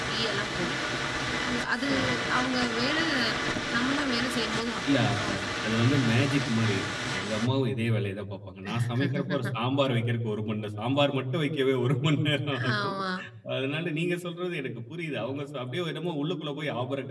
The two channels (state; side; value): identical; both; correlation 1.00